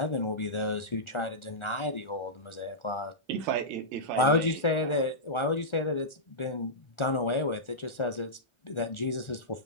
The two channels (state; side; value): late; right; 1.4 ms